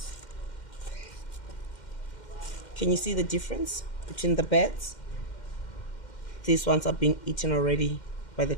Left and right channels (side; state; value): right; late; 2.1 ms